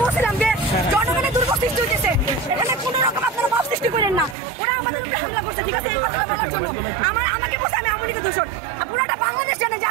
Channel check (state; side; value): drops out; left; at 4.4 s